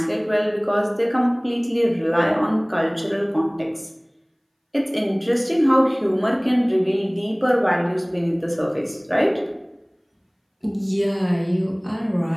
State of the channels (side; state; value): both; identical; correlation 1.00